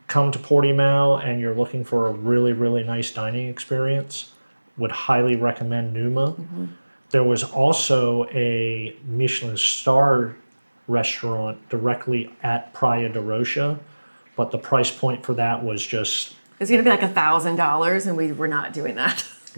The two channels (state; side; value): inverted; both; correlation -1.00